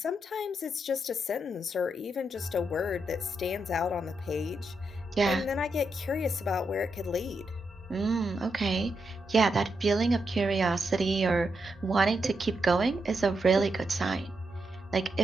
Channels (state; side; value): normal; both; correlation 0.83